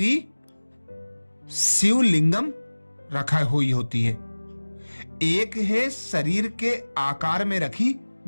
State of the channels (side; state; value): both; inverted; correlation -1.00